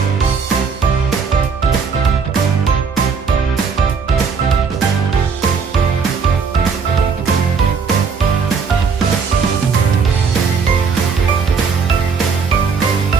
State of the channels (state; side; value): quieter; left; 5.5 dB